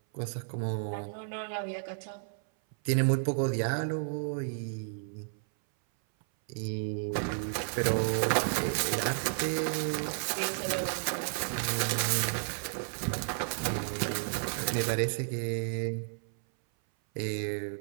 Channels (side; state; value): left; silent; 56 dB below the other